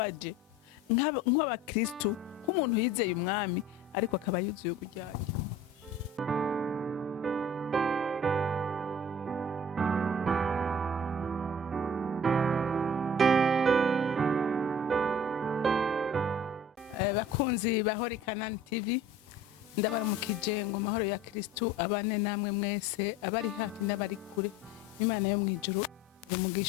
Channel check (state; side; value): normal; both; correlation 0.45